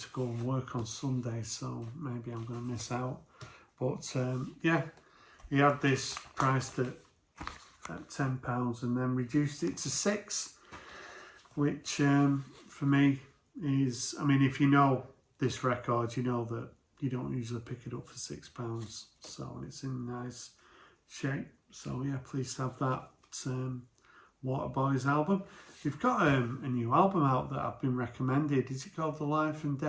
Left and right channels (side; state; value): both; identical; correlation 1.00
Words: go and work on Sunday, so maybe I'm going to miss out. But yeah, he had this priced at £10 and then reduced it to £6, which for me is, I mean, if you know this record, you know that you don't usually pick it up for £6, so it's in nice shape. So yeah, pleased to have that Waterboys album. We've got a new album out that I've been recommended. Is it called The Life and